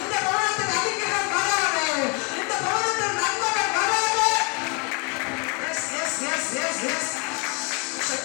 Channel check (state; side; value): quieter; right; 33.3 dB